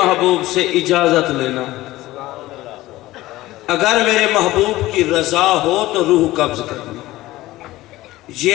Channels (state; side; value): quieter; right; 17.3 dB